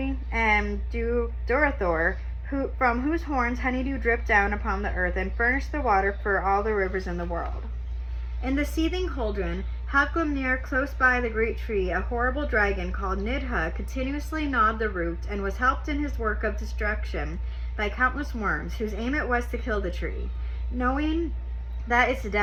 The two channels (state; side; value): identical; both; correlation 1.00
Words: and Durathor, from whose horns honeydew dripped down upon the earth and furnished the water for all the rivers in the world. In the seething cauldron, Hafglumnir, close by the great tree, a horrible dragon called Nidha continuously gnawed the root and was helped in his work of destruction by countless worms, whose aim it was to kill the tree, knowing that its